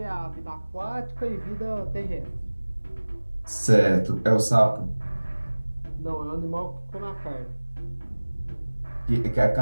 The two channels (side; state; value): both; inverted; correlation -1.00